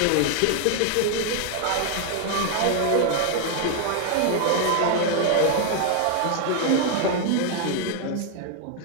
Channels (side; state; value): both; different; correlation 0.00